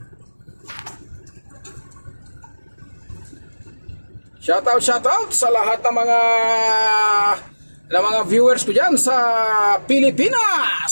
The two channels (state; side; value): inverted; both; correlation -1.00